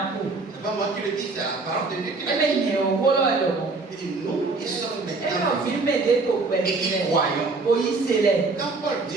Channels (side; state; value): left; quieter; 3.7 dB